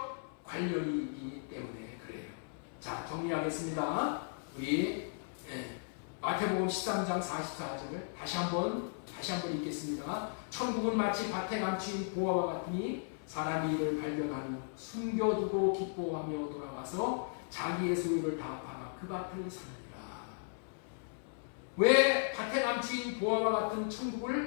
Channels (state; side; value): silent; right; 54 dB below the other